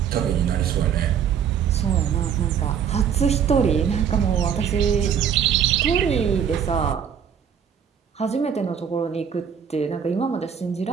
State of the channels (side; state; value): left; quieter; 8.0 dB